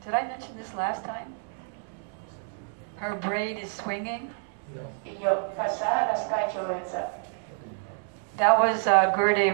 did I mention this last time? Her braid is swinging. Ее коса раскачивается. That was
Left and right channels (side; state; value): left; silent; 59 dB below the other